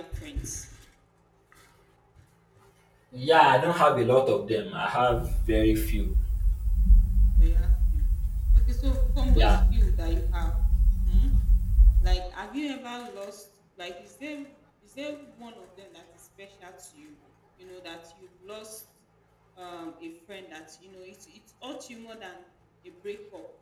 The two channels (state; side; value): identical; both; correlation 1.00